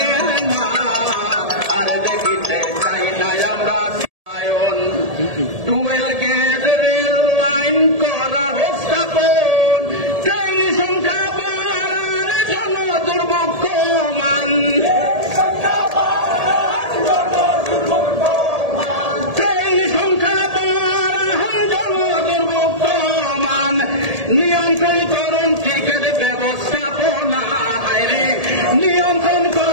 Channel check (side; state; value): left; late; 1.7 ms